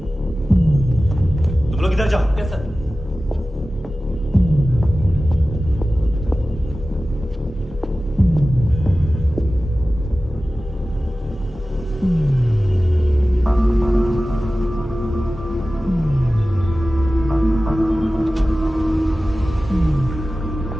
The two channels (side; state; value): both; normal; correlation 0.96